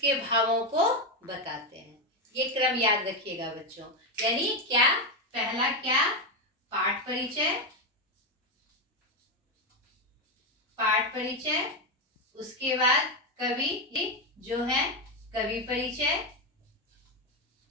भावों को बताते हैं। ये क्रम याद रखिएगा बच्चों। यानी क्या? पहला क्या? पाठ परिचय, पाठ परिचय, उसके बाद कवि जो है कवि परिचय,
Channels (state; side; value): normal; both; correlation 0.09